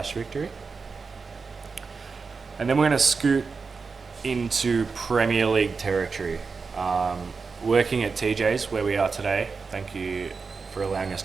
victory. And then we're going to scoot into Premier League territory. Working at TJ's, where we are today. Thank you for allowing us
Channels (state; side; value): quieter; left; 4.8 dB